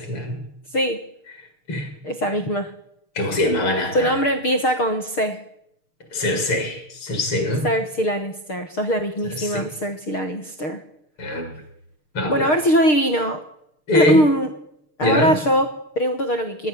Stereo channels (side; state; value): right; late; 6.6 ms